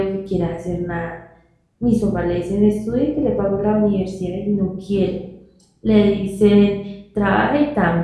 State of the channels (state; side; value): identical; both; correlation 1.00